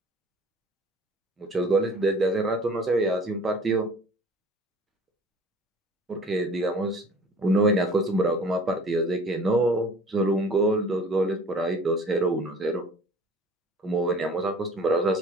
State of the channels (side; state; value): both; normal; correlation 0.47